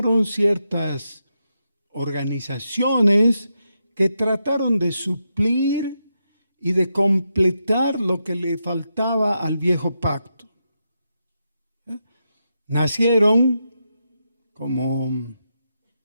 ciertas organizaciones que trataron de suplir y de completar lo que le faltaba al viejo pacto. Nacieron como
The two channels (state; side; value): inverted; both; correlation -0.85